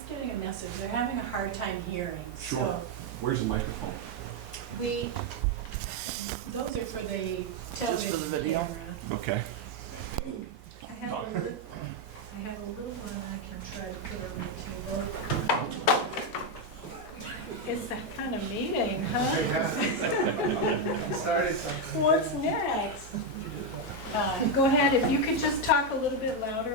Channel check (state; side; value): normal; both; correlation 0.04